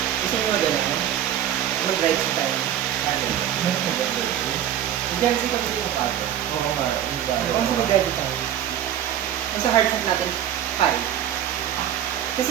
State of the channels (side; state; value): left; quieter; 10.7 dB